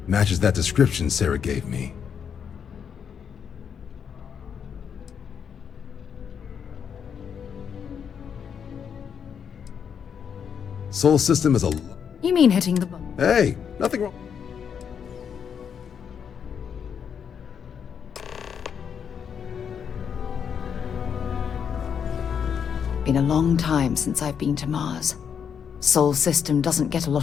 Matches that description Sarah gave me. Sol system is a... You mean hitting the button? Hey, nothing wrong. Been a long time since I've been to Mars. Sol system doesn't get a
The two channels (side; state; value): right; quieter; 7.5 dB